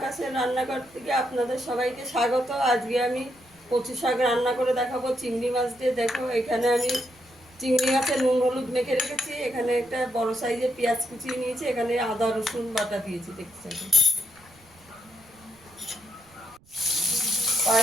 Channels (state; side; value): noise; right; rumble, 29 dB below the sound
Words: রান্নাঘর থেকে আপনাদের সবাইকে স্বাগত। আজকে আমি কচু শাক রান্না করে দেখাবো চিংড়ি মাছ দিয়ে। দেখো, এখানে আমি চিংড়ি মাছের নুন হলুদ মেখে রেখেছি। এখানে একটা বড় সাইজের পেঁয়াজ কুচিয়ে নিয়েছি। এখানে আদা রসুন বাটা দিয়েছি। দেখতে